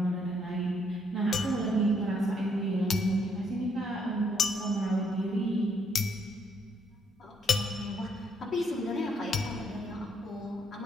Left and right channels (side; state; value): both; normal; correlation 0.71